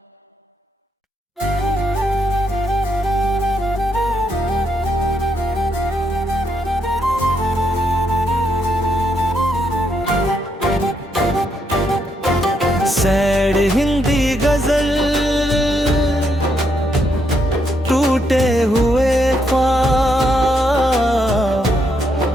सैड हिंदी गजल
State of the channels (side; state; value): both; normal; correlation 0.77